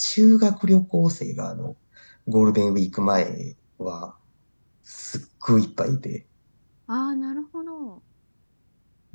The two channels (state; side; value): inverted; both; correlation -1.00